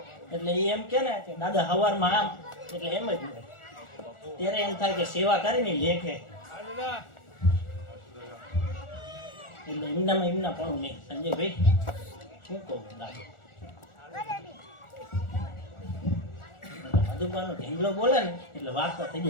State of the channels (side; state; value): right; late; 1.4 ms